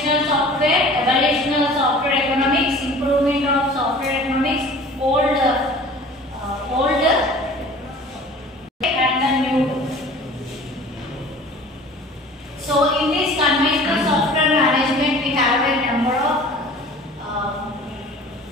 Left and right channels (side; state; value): both; normal; correlation 0.45